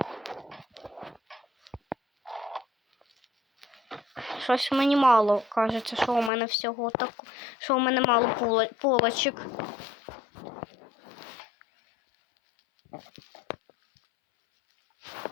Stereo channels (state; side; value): drops out; right; at 6.3 s